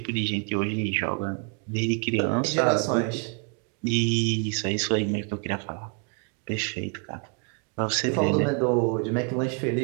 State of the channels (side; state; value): left; quieter; 38.1 dB